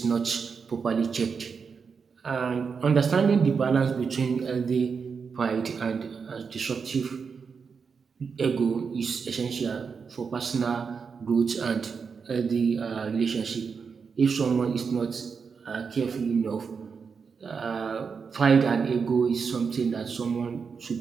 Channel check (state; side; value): quieter; left; 5.7 dB